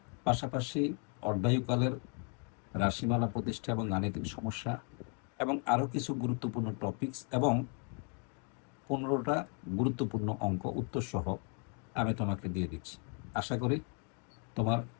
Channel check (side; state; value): right; quieter; 39.3 dB